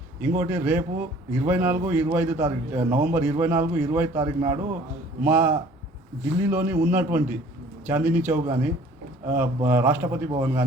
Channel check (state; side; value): normal; both; correlation 0.52